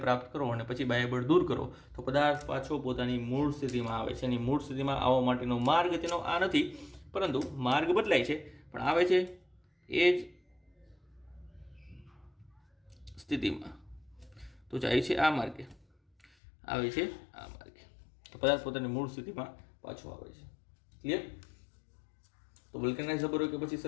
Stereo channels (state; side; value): drops out; right; at 16.3 s